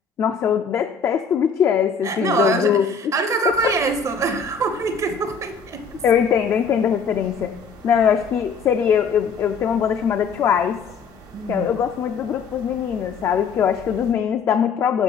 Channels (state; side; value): quieter; right; 5.3 dB